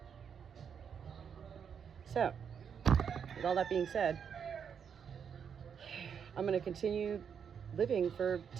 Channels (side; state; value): left; quieter; 7.3 dB